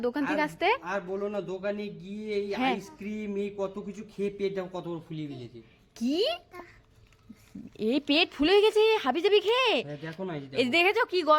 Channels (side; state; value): both; identical; correlation 1.00